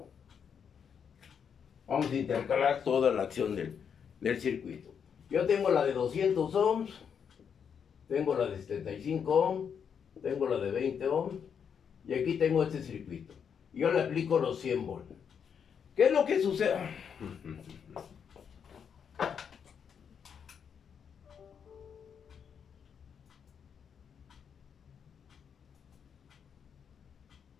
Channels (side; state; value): right; quieter; 7.3 dB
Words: Vamos a intercalar toda la acción del circuito. Yo tengo la de 200 ohms, tengo la de 75 ohms, tengo la de 20 ohms, y aquí tengo este circuito. Yo le aplico los 100 volts. ¿Qué es lo que sucede?